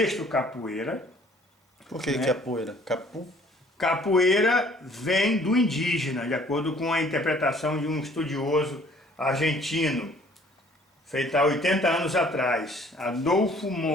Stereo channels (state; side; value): normal; both; correlation 0.57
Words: capoeira. Por que né? capoeira? Capu? Capoeira vem do indígena, de acordo com a interpretação de um estudioso argentino, feita há 80 anos atrás, Adolfo